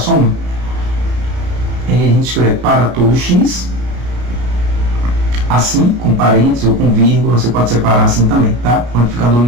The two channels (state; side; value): late; left; 33 ms